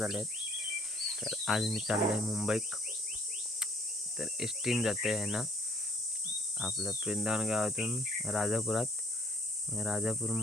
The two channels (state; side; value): normal; both; correlation 0.61